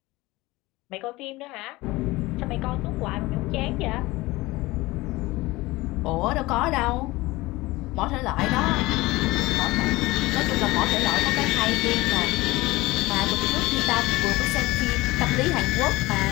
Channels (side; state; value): right; quieter; 20.3 dB